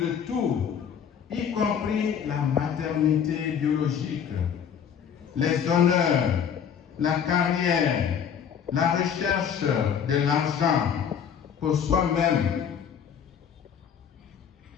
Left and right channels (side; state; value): right; quieter; 7.9 dB